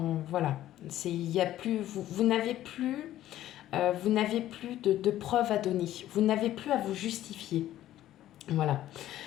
voilà, il y a plus, vous n'avez plus, de preuves à donner, vous n'avez plus à vous justifier, voilà.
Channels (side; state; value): right; quieter; 13.3 dB